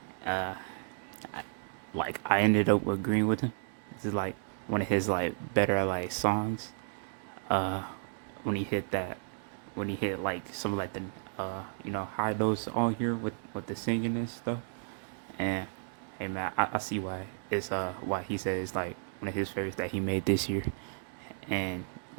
uh, like I ended up agreeing with him. This is like one of his like better like songs. Uh, when he hit that, when he hit like some of like the high notes on here with the singing and stuff. And hey man, I see why why he said it's like one of his favorites that he made this year. And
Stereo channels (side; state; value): left; silent; digital silence